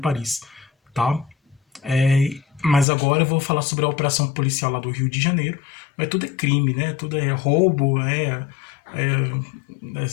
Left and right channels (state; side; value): drops out; right; at 2.9 s